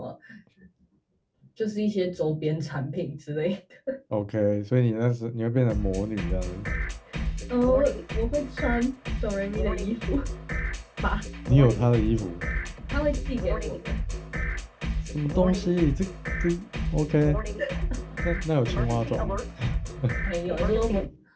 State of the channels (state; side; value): identical; both; correlation 1.00